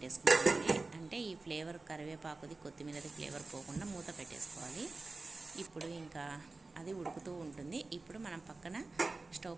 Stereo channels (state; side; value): quieter; left; 3.5 dB